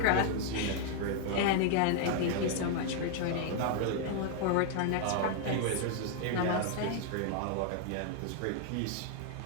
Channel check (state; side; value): different; both; correlation 0.00